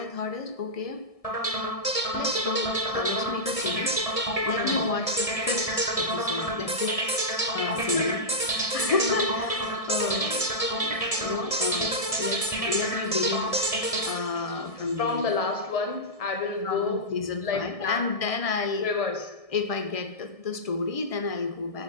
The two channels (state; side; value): late; right; 1.6 ms